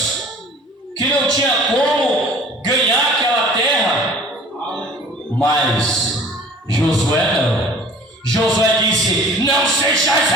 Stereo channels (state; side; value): normal; both; correlation 0.48